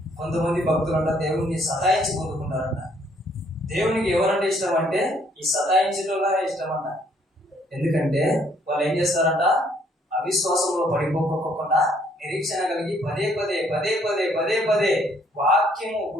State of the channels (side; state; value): both; normal; correlation 0.66